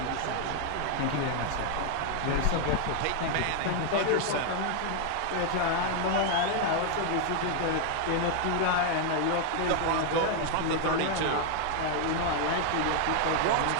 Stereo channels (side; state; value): both; different; correlation 0.00